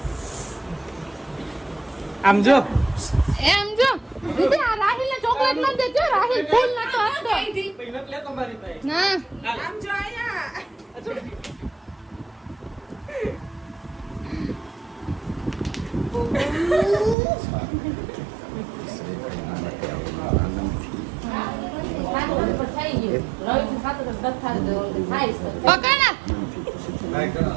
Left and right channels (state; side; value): drops out; left; at 17.2 s